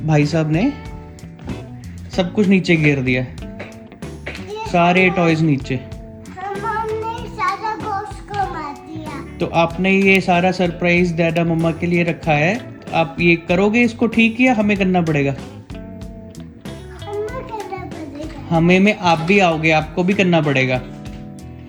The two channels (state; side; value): identical; both; correlation 1.00